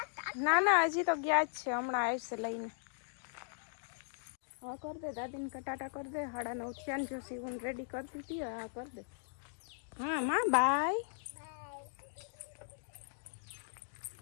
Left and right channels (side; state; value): right; silent; digital silence